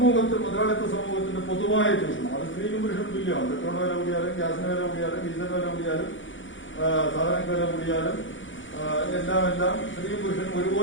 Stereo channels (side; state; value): right; late; 0.56 ms